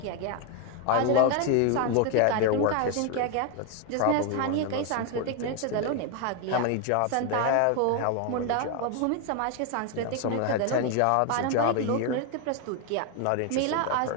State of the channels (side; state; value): both; different; correlation 0.01